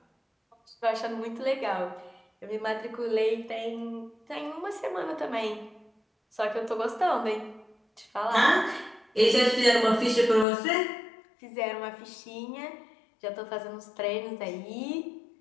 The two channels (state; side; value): drops out; right; at 10.5 s